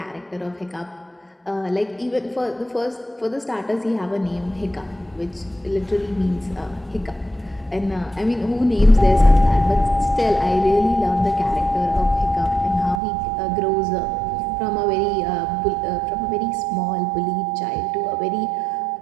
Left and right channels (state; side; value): drops out; left; at 13.0 s